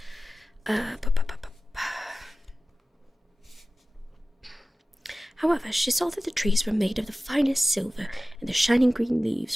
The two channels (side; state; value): both; normal; correlation 0.96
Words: However, she saw that the trees were made of the finest silver, and the shining green